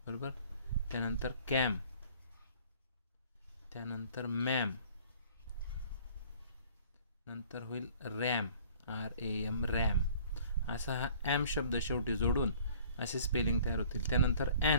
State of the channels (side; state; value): both; inverted; correlation -0.52